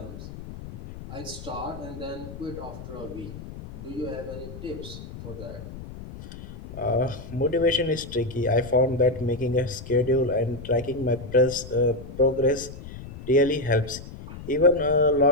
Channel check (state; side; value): noise; left; rumble, 13 dB below the sound